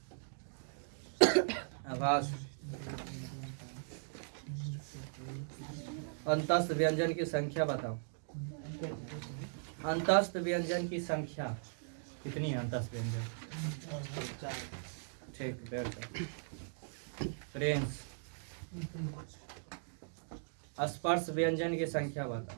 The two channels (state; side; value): silent; left; digital silence